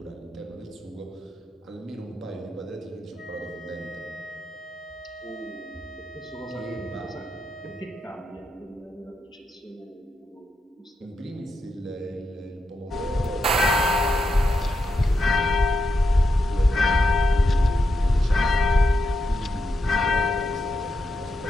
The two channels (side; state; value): both; normal; correlation 0.85